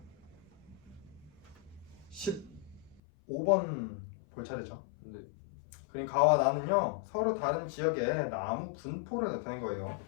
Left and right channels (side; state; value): right; drops out; at 3.0 s